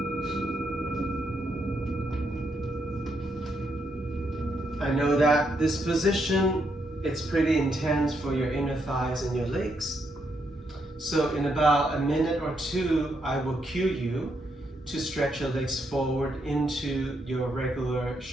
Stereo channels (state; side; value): normal; both; correlation 0.78